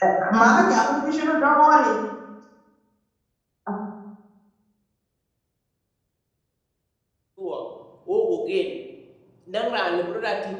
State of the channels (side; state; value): both; identical; correlation 1.00